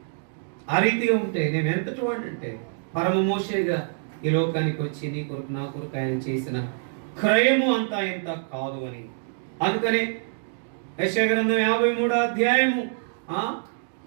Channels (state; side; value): silent; left; digital silence